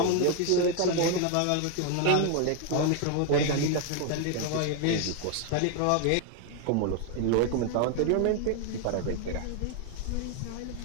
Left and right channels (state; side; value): different; both; correlation 0.01